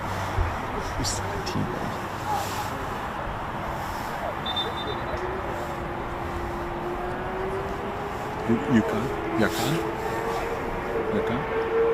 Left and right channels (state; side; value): identical; both; correlation 1.00